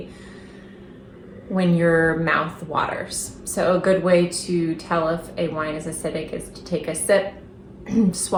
when your mouth waters. So a good way to tell if a wine is acidic is to take a sip,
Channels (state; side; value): identical; both; correlation 1.00